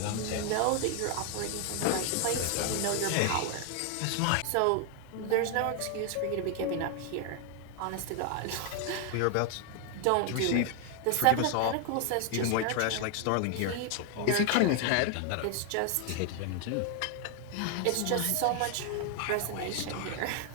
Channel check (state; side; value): different; both; correlation 0.00